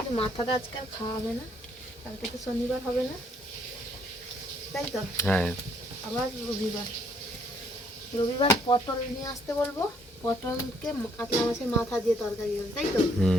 মাথাটা আজকে আর খাওয়া হবে না, কালকে তো শনিবার হবে না, তাই তো? হ্যাঁ আবার রবিবার পটল নিয়ে আসতে বলবো, পটলকে কাতলা মাছের মাথা দিয়ে তরকারি হবে, তাই তো?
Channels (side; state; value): both; normal; correlation 0.67